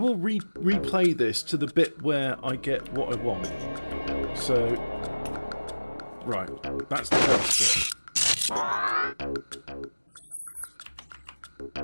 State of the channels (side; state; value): both; inverted; correlation -1.00